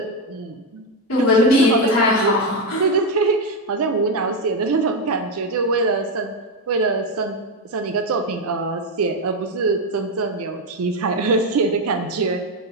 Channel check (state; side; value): normal; both; correlation 0.07